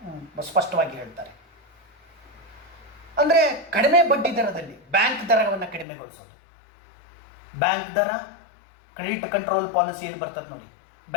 ಸ್ಪಷ್ಟವಾಗಿ ಹೇಳ್ತಾರೆ. ಅಂದರೆ ಕಡಿಮೆ ಬಡ್ಡಿ ದರದಲ್ಲಿ ಬ್ಯಾಂಕ್ ದರವನ್ನು ಕಡಿಮೆಗೊಳಿಸೋದು. ಬ್ಯಾಂಕ್ ದರ, ಕ್ರೆಡಿಟ್ ಕಂಟ್ರೋಲ್ ಪಾಲಿಸಿ ಏನು ಬರ್ತದೆ ನೋಡಿ,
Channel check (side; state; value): right; drops out; at 5.9 s